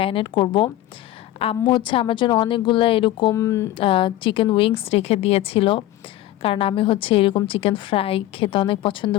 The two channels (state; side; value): quieter; right; 14.5 dB